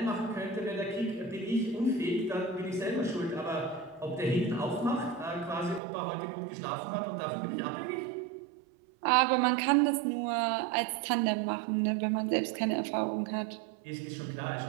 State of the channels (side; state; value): left; drops out; at 5.8 s